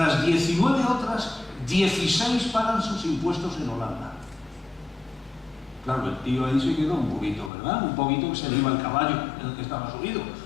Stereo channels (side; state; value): right; drops out; at 7.5 s